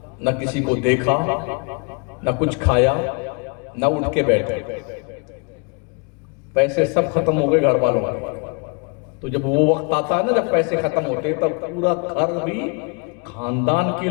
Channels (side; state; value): right; quieter; 34.7 dB